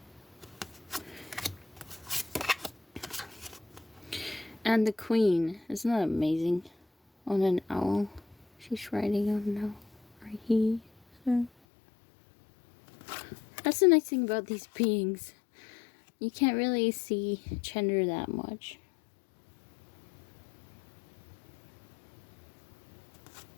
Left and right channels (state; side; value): drops out; right; at 11.5 s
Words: And the Queen. Isn't that amazing? On an owl. She's riding on an owl. Or he. So. That's the nice thing about these beings. You can't really see gender that much.